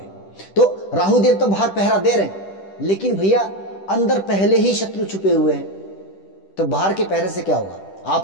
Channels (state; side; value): late; right; 10 ms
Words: तो राहुदेव तो बाहर पहरा दे रहे हैं, लेकिन भैया अंदर पहले ही शत्रु छुपे हुए हैं, तो बाहर के पहरे से क्या होगा?